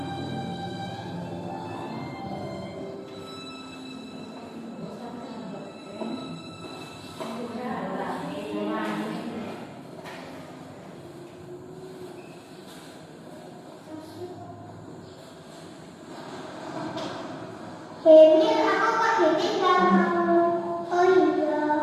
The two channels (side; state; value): both; identical; correlation 1.00